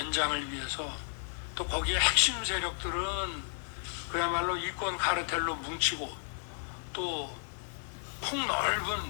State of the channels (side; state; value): right; silent; 56 dB below the other